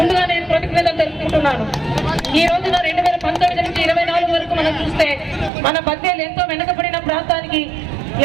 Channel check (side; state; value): left; drops out; at 5.5 s